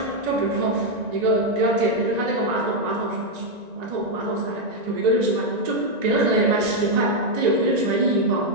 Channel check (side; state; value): left; late; 1.9 ms